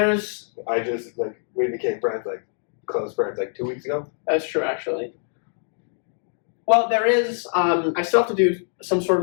I just, like, we became friends, like, close friends, like, 2 weeks ago. That's true, actually. Well, there is, I still have to do some sort of,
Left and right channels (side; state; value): right; silent; 63 dB below the other